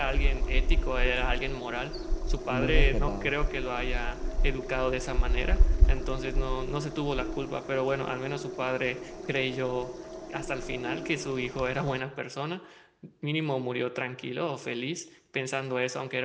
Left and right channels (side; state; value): both; identical; correlation 1.00